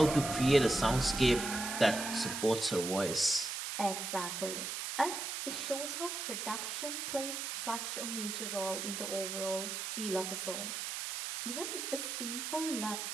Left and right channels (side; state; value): right; noise; hiss, 4 dB below the sound